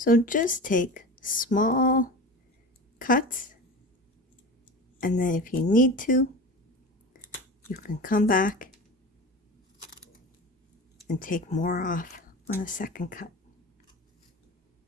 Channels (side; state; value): both; normal; correlation 0.31